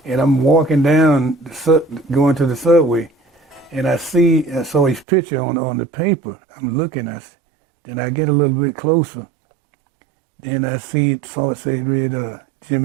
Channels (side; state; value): left; drops out; at 5.1 s